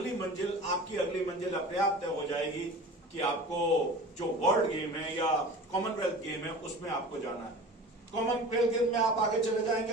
मंजिल अपने आप तय हो जाएगी कि आपको जो वर्ल्ड गेम है या कॉमनवेल्थ गेम है उसमें आपको जाना है। कॉमनवेल्थ गेम में आप आगे चले जाएंगे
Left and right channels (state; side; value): normal; both; correlation 0.38